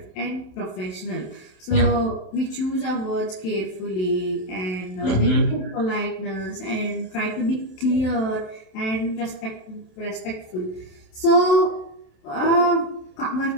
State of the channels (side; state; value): right; late; 27 ms